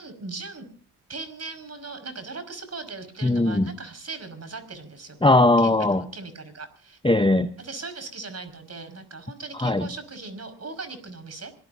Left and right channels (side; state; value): both; normal; correlation 0.61